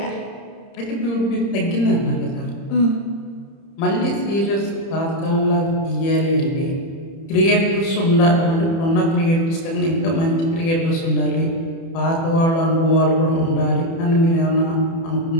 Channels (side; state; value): right; late; 30 ms